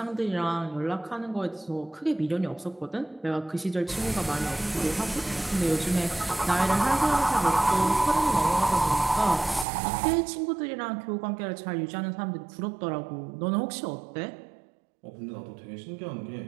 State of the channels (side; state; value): left; drops out; at 9.7 s